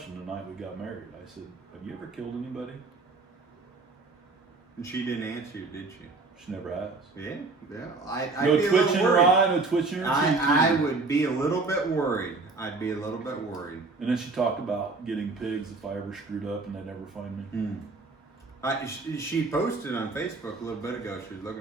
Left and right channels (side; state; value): left; quieter; 3.7 dB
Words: the night we got married. I said, have you ever killed anybody? And she didn't answer you, did she? She never has. Yeah. I'd No be a twitch little in her worried. eye, no twitch in her cheek. I would be a little bit worried. I'd be a little bit worried. And then she talked about getting pigs if I ever screwed up and they'd never find me. She posted on Facebook a little bit ago. She was